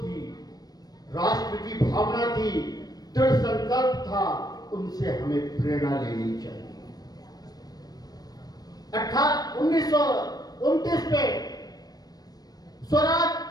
राष्ट्र की भावना थी, दृढ़ संकल्प था, उनसे हमें प्रेरणा लेनी चाहिए। 1929 में स्वराज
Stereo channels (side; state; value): right; late; 0.19 ms